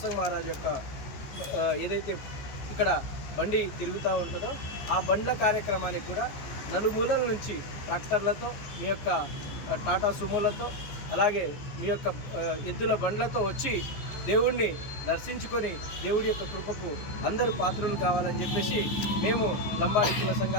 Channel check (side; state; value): right; late; 14 ms